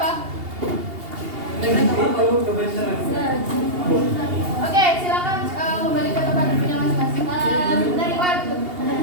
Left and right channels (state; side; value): late; left; 2.8 ms